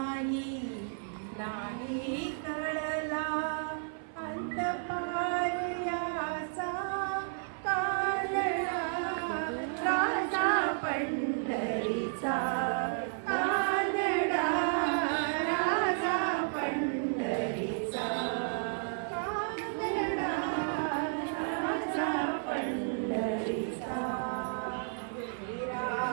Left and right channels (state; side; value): silent; left; 56 dB below the other